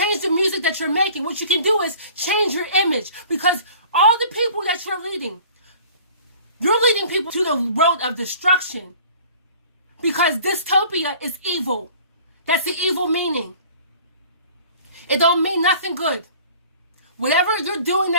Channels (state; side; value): inverted; both; correlation -0.48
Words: the music that you're making. What you can do is change your image. Because all the people that you're leading people to the road of destruction. Because dystopia is evil. That's the evil meaning. It don't mean nothing good. Whatever you're doing